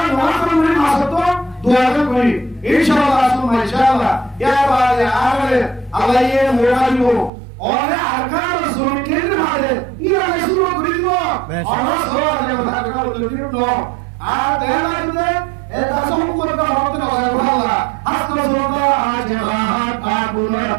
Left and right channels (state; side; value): drops out; left; at 7.3 s